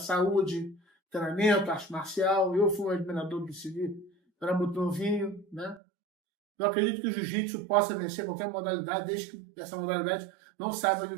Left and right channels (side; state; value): left; drops out; at 5.8 s